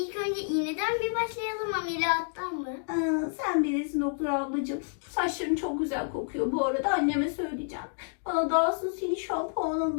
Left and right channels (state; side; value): silent; right; digital silence